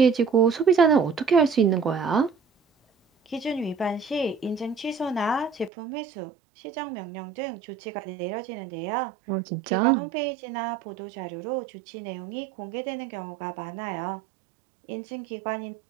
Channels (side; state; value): left; drops out; at 5.7 s